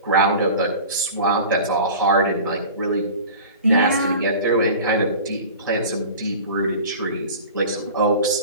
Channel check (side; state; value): both; inverted; correlation -0.38